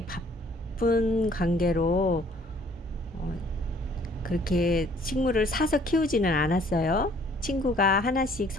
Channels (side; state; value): both; normal; correlation 0.59